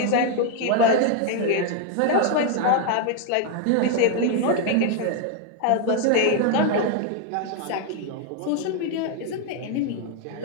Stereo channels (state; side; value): different; both; correlation 0.00